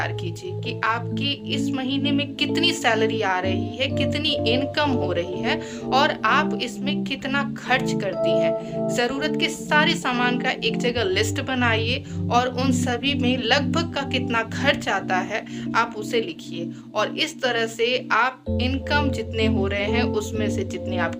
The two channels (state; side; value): identical; both; correlation 1.00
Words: कीजिए कि आपकी इस महीने में कितनी सैलरी आ रही है, कितनी इनकम हो रही है और आप इसमें कितना खर्च करती हैं। ज़रूरत के सारे सामान का एक जगह लिस्ट बनाइए और उन सभी में लगभग का कितना खर्च आता है आप उसे लिखिए और इस तरह से आप इनकम जितने हो रहे हैं उसमें से जितनी